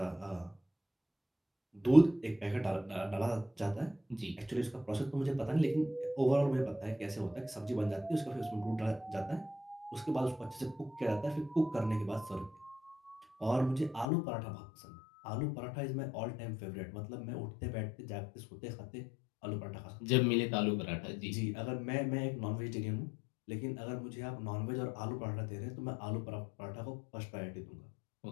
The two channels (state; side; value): drops out; right; at 14.1 s